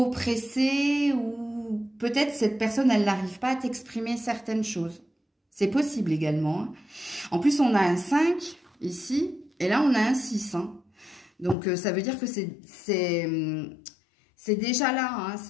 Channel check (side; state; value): right; drops out; at 11.6 s